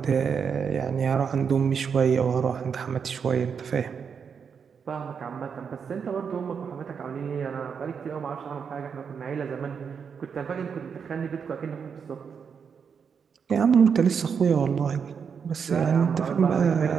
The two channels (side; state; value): left; quieter; 6.6 dB